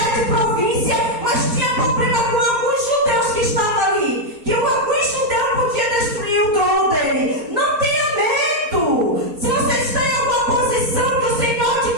províncias, mas tinha problema com alguns judeus que estavam ali, que alguns judeus podiam destruir o trono dele. Não tenha medo. Se você está em alguma posição que o Senhor te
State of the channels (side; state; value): left; late; 4.3 ms